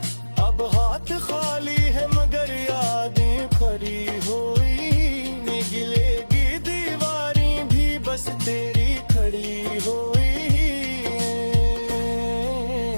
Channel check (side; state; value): both; inverted; correlation -1.00